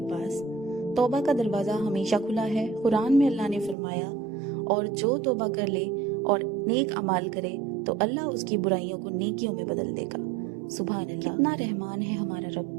پاس۔ توبہ کا دروازہ ہمیشہ کھلا ہے۔ قرآن میں اللہ نے فرمایا، اور جو توبہ کر لے اور نیک اعمال کرے تو اللہ اس کی برائیوں کو نیکیوں میں بدل دے گا۔ سبحان اللہ، کتنا رحمان ہے ہمارا رب۔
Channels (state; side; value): drops out; left; at 3.8 s